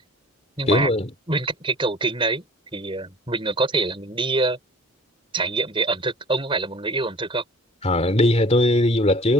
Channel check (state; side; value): normal; both; correlation 0.46